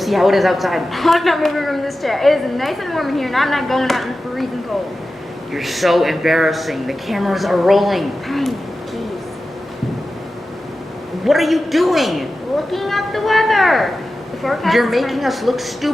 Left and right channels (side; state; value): both; normal; correlation 0.94